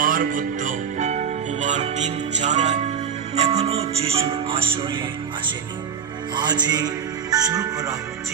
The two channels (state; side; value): quieter; left; 7.4 dB